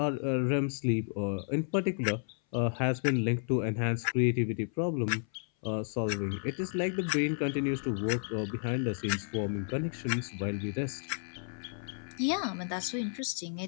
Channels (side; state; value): right; silent; 56 dB below the other